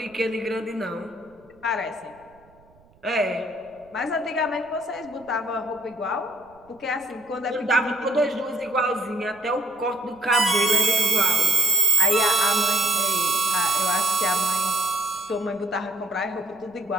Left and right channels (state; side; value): noise; right; rumble, 30 dB below the sound